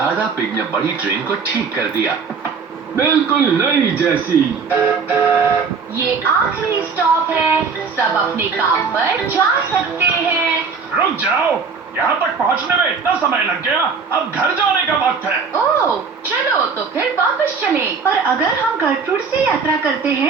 पिग ने बड़ी ट्रेन को ठीक कर दिया, बिल्कुल नई जैसी। ये आखिरी स्टॉप है, सब अपने काम पर जा सकते हैं। रुक जाओ, यहाँ तक पहुँचने में इतना समय लग गया, अब घर जाने का वक्त है। ओह, चलो तो फिर वापस चलें। पर अगर हम गर्ट्रूड से यात्रा करते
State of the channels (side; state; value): left; quieter; 5.3 dB